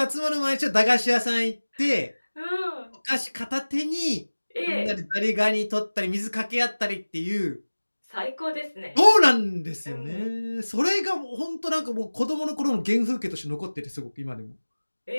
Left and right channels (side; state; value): both; inverted; correlation -1.00